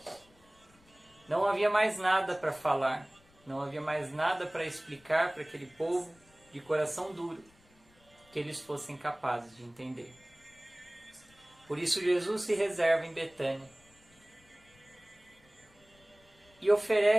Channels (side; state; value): left; noise; rumble, 30 dB below the sound